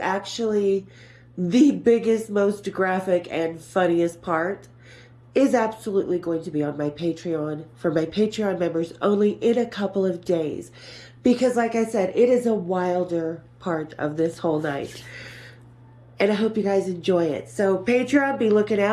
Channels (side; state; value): both; identical; correlation 1.00